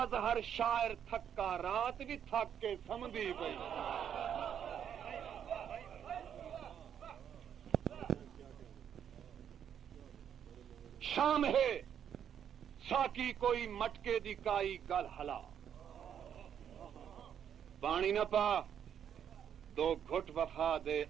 شاعر تھکا رات بھی تھک کے سم دی پئی. شام ہے ساکی کوئی مٹکے دی کائی گل ہلا. پانی نہ پا دو گھٹ وفا دے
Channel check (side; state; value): left; quieter; 8.8 dB